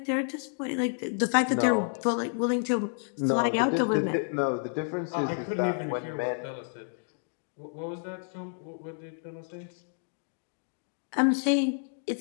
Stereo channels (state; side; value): silent; right; digital silence